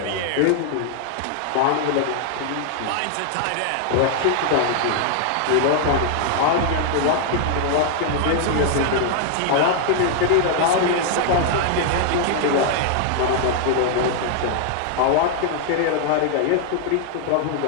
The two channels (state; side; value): different; both; correlation 0.00